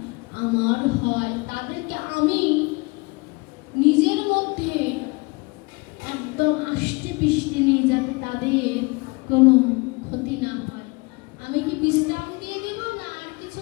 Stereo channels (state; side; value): quieter; right; 27.1 dB